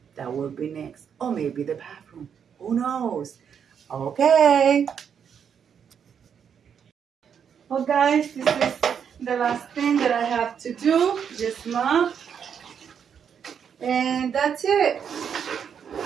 That will be next. Or maybe the bathroom. Who knows? Okay. Well, guys, this is the last thing that I have to do. Just mop. And that's it.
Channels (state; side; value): quieter; left; 7.6 dB